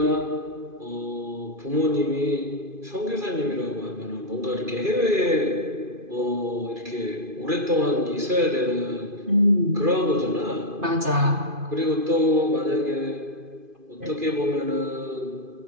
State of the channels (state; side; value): late; left; 2.5 ms